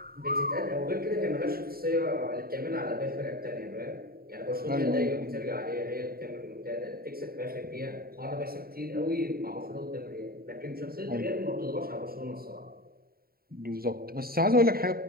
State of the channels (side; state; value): left; late; 0.43 ms